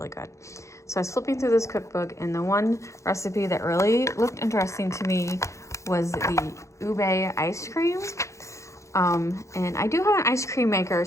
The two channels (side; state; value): right; late; 0.15 ms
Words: good. So I was flipping through this cookbook, and the one recipe that really looked interesting to me was the ube ice cream. And I do have an ice cream maker.